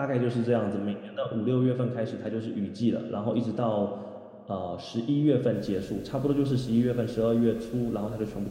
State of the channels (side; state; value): both; identical; correlation 1.00